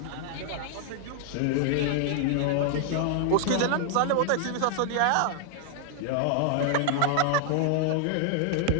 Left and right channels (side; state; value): both; different; correlation 0.00